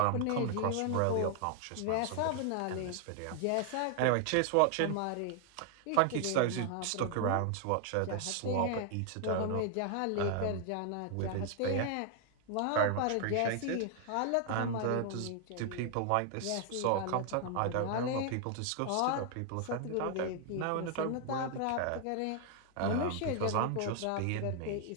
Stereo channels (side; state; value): both; different; correlation 0.00